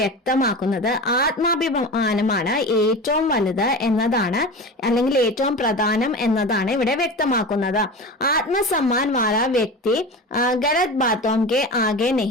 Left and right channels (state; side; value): normal; both; correlation 0.30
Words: വ്യക്തമാക്കുന്നത് ആത്മാഭിമാനമാണ് ഏറ്റവും വലുത് എന്നതാണ്, അല്ലെങ്കിൽ ഏറ്റവും പ്രധാനം എന്നതാണ് ഇവിടെ വ്യക്തമാക്കുന്നത്. ആത്മസമ്മാൻ വാല വ്യക്തി ഗലത് ബാത്തോം കെ ആകെ